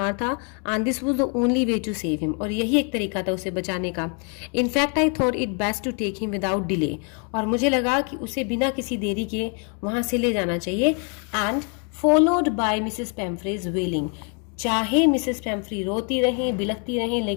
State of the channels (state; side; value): quieter; right; 38.7 dB